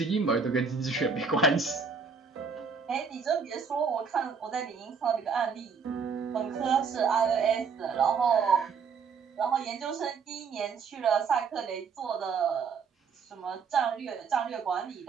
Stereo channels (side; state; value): left; quieter; 5.7 dB